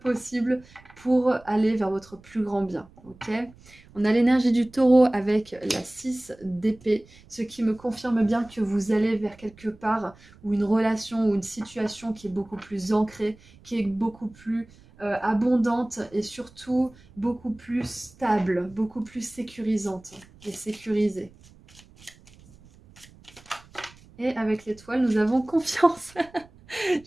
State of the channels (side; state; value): right; noise; rumble, 25 dB below the sound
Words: pour aller vers votre plus grand bien. Ok ? On a l'énergie du taureau avec la 6 d'épée, ce qui me confirme bien que vous allez vers quelque part ou une relation ou une situation qui est beaucoup plus ancrée, qui est beaucoup plus abondante et surtout beaucoup plus stable, beaucoup plus sécurisante et sécurisée. Et avec l'étoile, nous avons confiance.